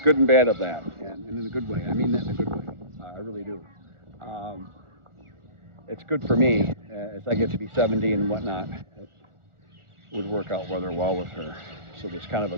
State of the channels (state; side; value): late; left; 1.4 ms